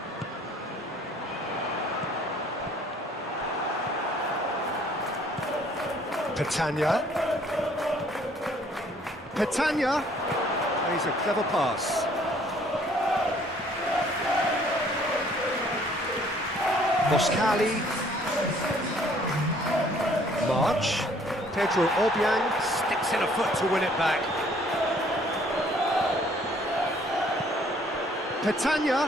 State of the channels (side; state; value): both; normal; correlation 0.60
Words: Petagna. Petagna plays a clever pass. Moskali. March. Pedro Obiang Sticks in a foot to win it back.